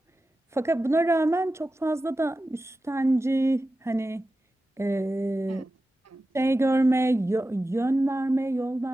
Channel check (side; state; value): both; normal; correlation 0.94